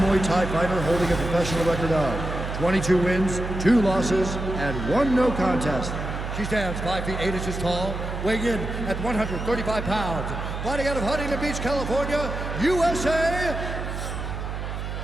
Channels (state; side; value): noise; right; hum, 5 dB below the sound